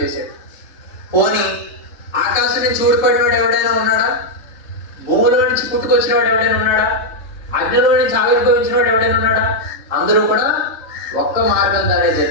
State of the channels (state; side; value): late; right; 3.3 ms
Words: చేశాడు. పోనీ ఆకాశం నుంచి ఊడిపడినవాడు ఎవడైనా ఉన్నాడా? భూమిలో నుంచి పుట్టుకొచ్చిన వాడు ఎవడైనా ఉన్నాడా? అగ్నిలో నుంచి ఆవిర్భవించిన వాడు ఎవడైనా ఉన్నాడా? అందరూ కూడా ఒక్క మార్గం ద్వారా